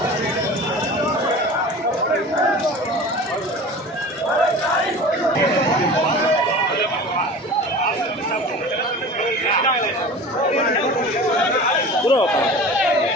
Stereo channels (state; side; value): normal; both; correlation 0.37